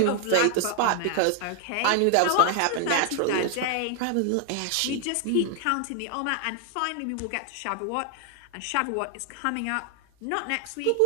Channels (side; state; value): both; different; correlation 0.00